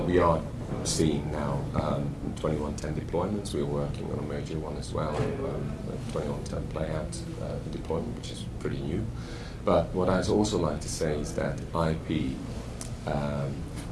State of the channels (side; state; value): both; identical; correlation 1.00